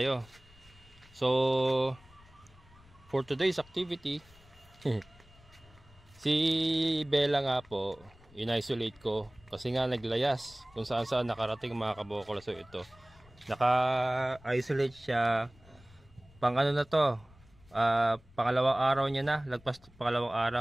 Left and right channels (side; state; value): left; noise; rumble, 26 dB below the sound